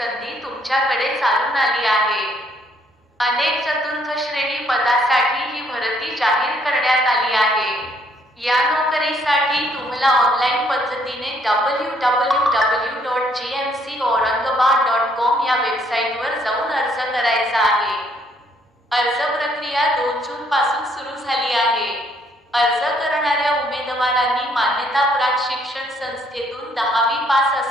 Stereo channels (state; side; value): normal; both; correlation 0.67